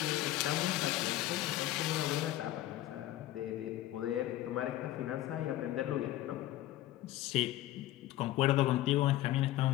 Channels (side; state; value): right; quieter; 14.9 dB